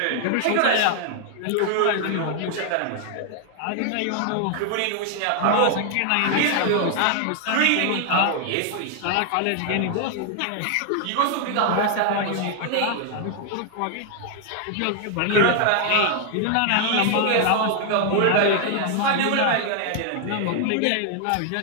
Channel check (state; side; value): different; both; correlation 0.00